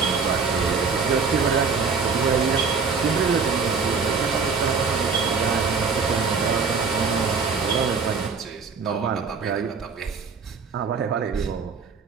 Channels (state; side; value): quieter; left; 5.1 dB